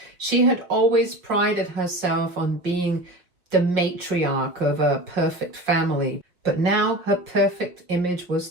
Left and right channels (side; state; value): left; late; 5.3 ms